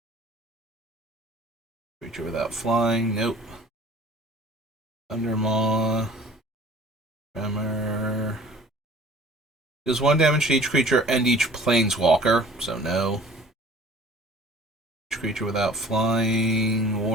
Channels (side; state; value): both; normal; correlation 0.48